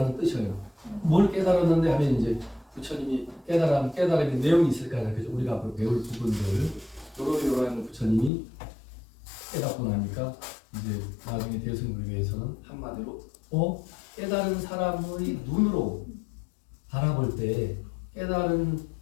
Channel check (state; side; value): drops out; right; at 8.3 s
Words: 뜻이에요. 뭘 깨달았는데 하면 이제 부처님이 깨달음의 내용이 있을 거 아니야. 그죠? 우리가 앞으로 배울 부분들 요러요러한 부처님이 깨닫고 나니까 이제 나중에 대승불교에서는 한마디로 깨달은 사람의 눈으로 바라볼 때 깨달은